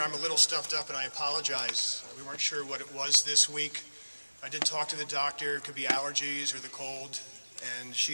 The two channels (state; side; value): inverted; both; correlation -1.00